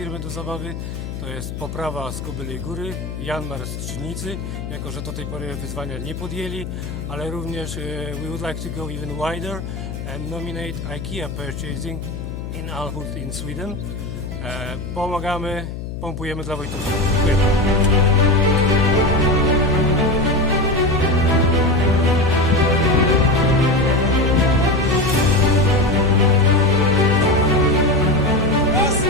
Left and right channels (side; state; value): left; noise; hum, 8 dB below the sound